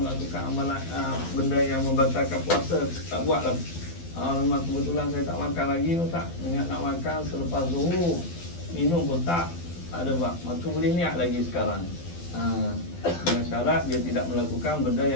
amalan benda yang membatalkan puasa. Tak buat lah. Memang kebetulan saya tak makan lagi, tak niat nak makan selepas zuhur, minum pun tak ada buat, maka boleh niat lagi sekarang. Dengan syarat dia tidak melakukan benda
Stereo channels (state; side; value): late; right; 12 ms